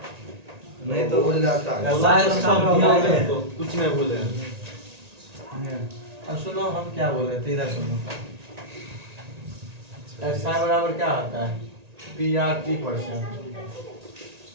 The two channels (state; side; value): late; left; 1.9 ms